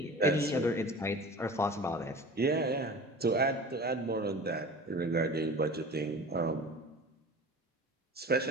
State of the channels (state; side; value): normal; both; correlation 0.38